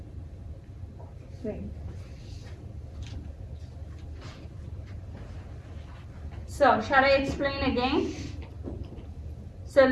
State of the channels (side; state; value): both; identical; correlation 1.00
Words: Great. So, shall I explain again? So,